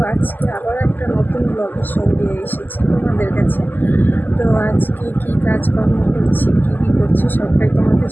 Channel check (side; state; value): right; late; 0.087 ms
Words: আজকে আবার একটা নতুন ব্লগের সঙ্গে এসেছি তোমাদের কাছে। তো আজকে কি কাজকর্ম করছি, কী করছি সবটাই তোমাদের